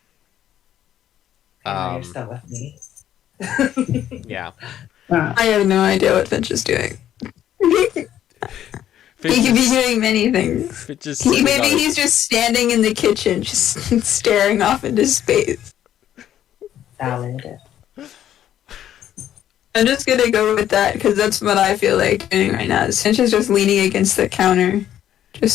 You're still with me. yeah. Wow. I have no idea what Finch is doing. He could be doing many things. Maybe he's just standing in the kitchen, just staring off into space. Valid. I'm just gonna go with that because that's what I feel like doing right now. Finch is just leaning against the counter,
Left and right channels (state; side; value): quieter; right; 11.1 dB